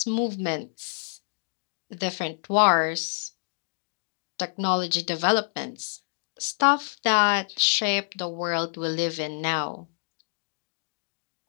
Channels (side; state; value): right; silent; digital silence